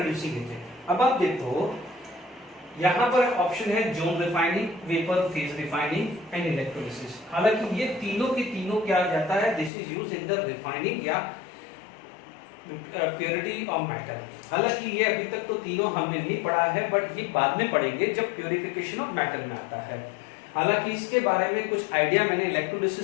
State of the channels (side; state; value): right; drops out; at 9.7 s